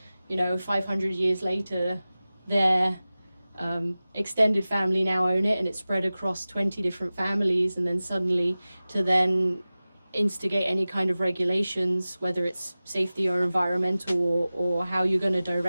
500 years later, their extended family now own it, and it's spread across 20 different families, and then suddenly to then instigate any kind of regulations, whether it's safety or environmental or how you're going to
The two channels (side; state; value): both; inverted; correlation -0.97